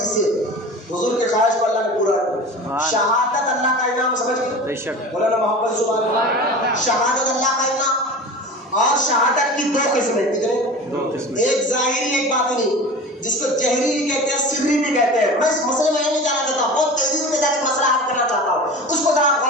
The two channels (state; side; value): normal; both; correlation 0.34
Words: حضور کے خواہش کو اللہ نے پورا کیا. شہادت اللہ کا انعام سمجھ گئے؟ بے شک. مولانا محمد سبحان اللہ. شہادت اللہ کا انعام. اور شہادت کی دو قسمیں. کتنے؟ دو قسمیں. ایک ظاہری ایک باطنی، جس کو جہری بھی کہتے ہیں سری بھی کہتے ہیں. میں اس مسئلے میں نہیں جانا چاہتا، بہت تیزی سے جا کے مسئلہ حل کرنا چاہتا ہوں، اس کو ذرا